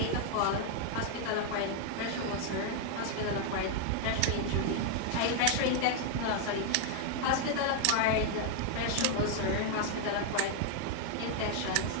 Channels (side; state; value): both; different; correlation 0.00